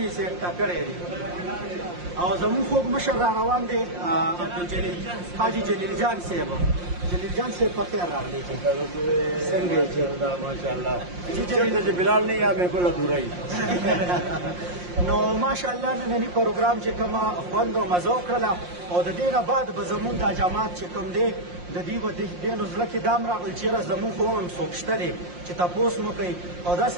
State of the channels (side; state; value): left; late; 5.6 ms